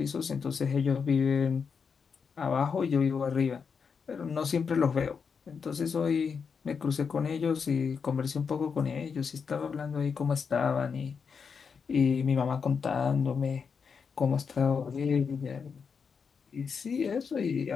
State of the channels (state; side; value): quieter; right; 6.0 dB